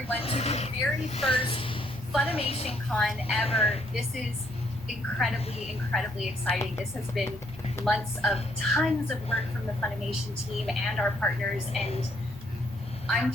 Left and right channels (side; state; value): both; normal; correlation 0.69